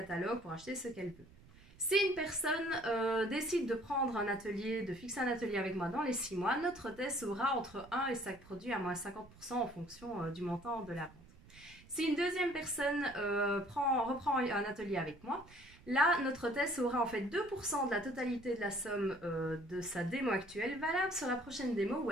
pour acheter ce qu'elle veut. Si une personne décide de prendre un atelier, de fixer un atelier avec moi dans les 6 mois, notre Tess aura entre 1 et 5 produits à moins 50% en fonction du montant de la vente. Si une deuxième personne reprend un atelier avec moi, là, notre Tess aura en fait 2% de la totalité de la somme de sa démo actuelle, valable sur la prochaine démo où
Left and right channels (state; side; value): noise; right; rumble, 23 dB below the sound